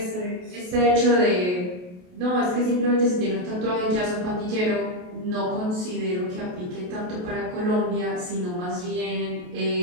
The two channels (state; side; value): late; left; 28 ms